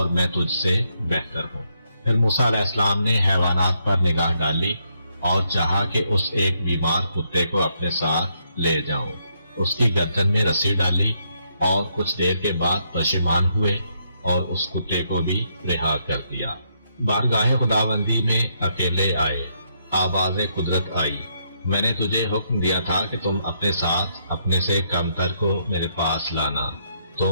میں تجھ سے بہتر ہوں۔ پھر موسیٰ علیہ السلام نے حیوانات پر نگاہ ڈالی اور چاہا کہ اس ایک بیمار کتے کو اپنے ساتھ لے جاؤں۔ اس کی گردن میں رسی ڈالی اور کچھ دیر کے بعد پشیمان ہوئے اور اس کتے کو بھی رہا کر دیا۔ بارگاہ خداوندی میں اکیلے آئے، آواز قدرت آئی، میں نے تجھے حکم دیا تھا کہ تم اپنے ساتھ اپنے سے کمتر کو میرے پاس لانا،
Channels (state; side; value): inverted; both; correlation -0.76